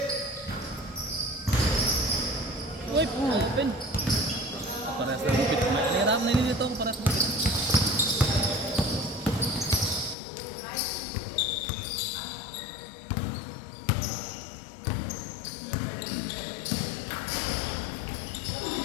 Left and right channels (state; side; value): drops out; right; at 10.2 s